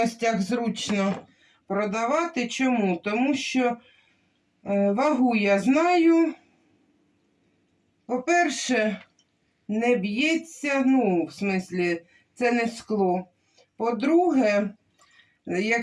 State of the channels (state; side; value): identical; both; correlation 1.00